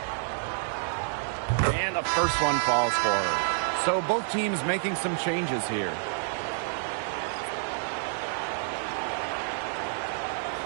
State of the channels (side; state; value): left; silent; 59 dB below the other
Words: And the first one falls for her. So both teams making some changes here.